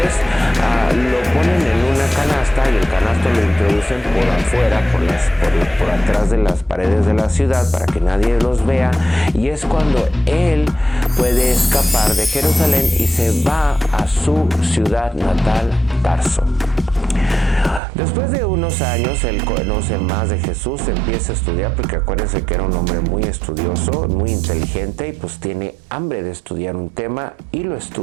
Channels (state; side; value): drops out; left; at 17.8 s